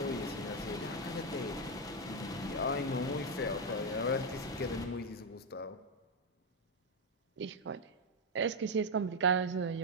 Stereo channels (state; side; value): normal; both; correlation 0.04